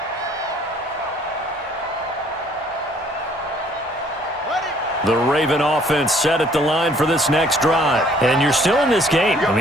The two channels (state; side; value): normal; both; correlation 0.59